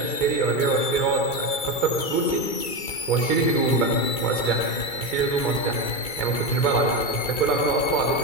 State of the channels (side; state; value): right; late; 2.3 ms